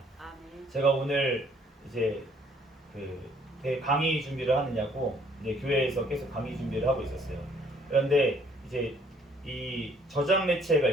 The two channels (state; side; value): normal; both; correlation 0.62